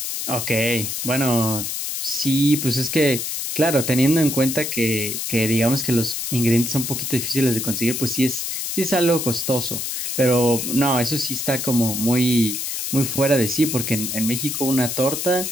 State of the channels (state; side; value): noise; left; hiss, 3 dB below the sound